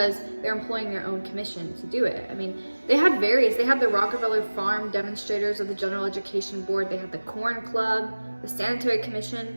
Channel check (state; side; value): inverted; both; correlation -1.00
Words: they're employing their own commission to do it. I mean, they had the Rockefeller Farm Demonstrators of the General Education Board, they had the Corn Club, the Sanitary